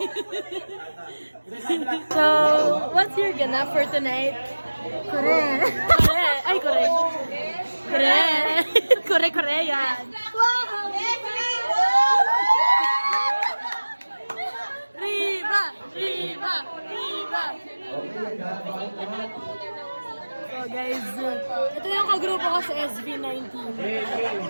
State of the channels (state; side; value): inverted; both; correlation -1.00